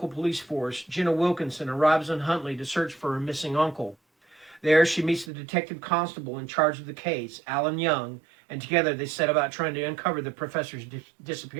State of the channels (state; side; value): drops out; left; at 5.3 s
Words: police force, Jenna Wilkinson arrives in Huntley to search for her missing uncle. There, she meets the detective constable in charge of the case, Alan Young, and together they set about trying to uncover the professor's